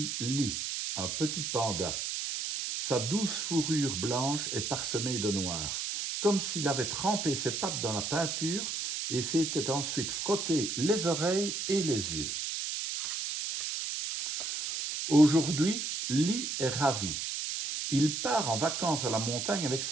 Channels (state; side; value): noise; right; hiss, 3 dB below the sound